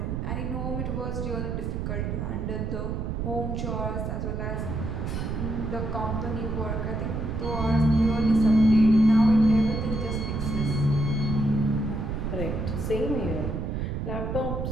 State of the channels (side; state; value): right; noise; rumble, 3 dB below the sound